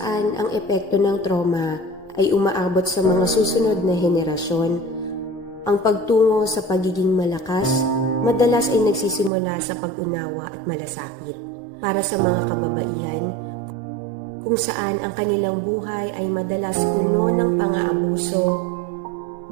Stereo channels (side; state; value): left; drops out; at 9.3 s